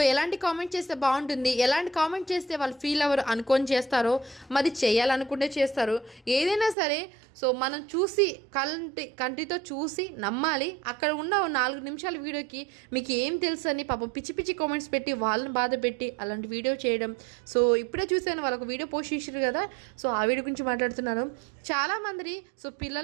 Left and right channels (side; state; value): left; drops out; at 6.8 s